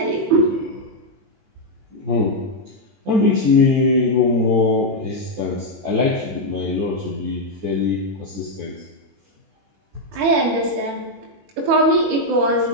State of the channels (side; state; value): left; late; 21 ms